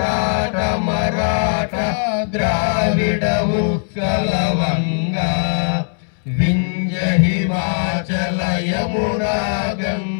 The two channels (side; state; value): right; silent; 66 dB below the other